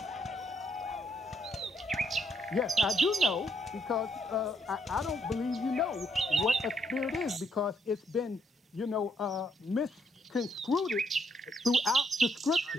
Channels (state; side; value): normal; both; correlation 0.73